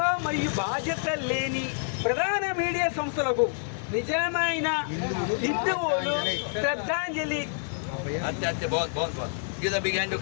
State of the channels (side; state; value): right; silent; digital silence